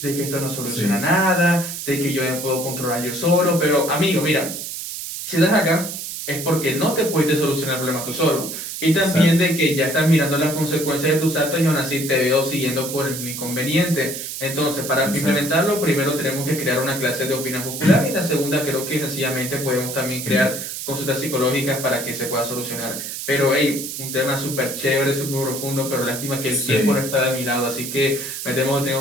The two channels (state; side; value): noise; right; hiss, 7 dB below the sound